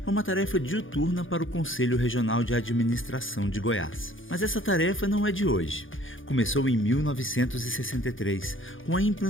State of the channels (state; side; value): late; right; 0.58 ms